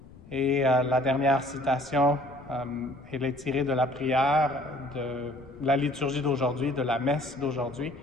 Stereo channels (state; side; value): noise; left; rumble, 22 dB below the sound